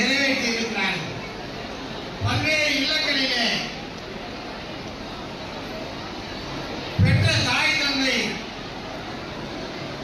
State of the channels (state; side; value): identical; both; correlation 1.00